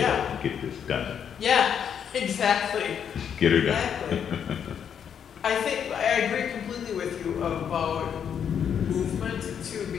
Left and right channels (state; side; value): quieter; right; 8.1 dB